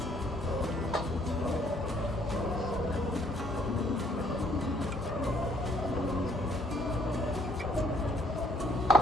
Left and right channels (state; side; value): normal; both; correlation 0.64